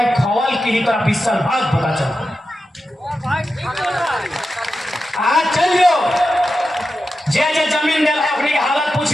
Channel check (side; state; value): both; normal; correlation 0.91